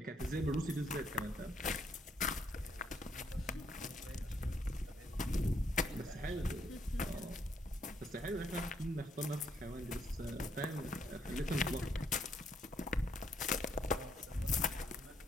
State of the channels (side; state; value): both; normal; correlation 0.71